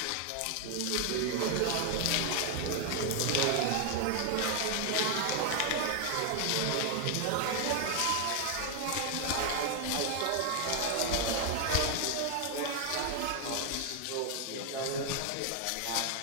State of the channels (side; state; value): both; different; correlation 0.00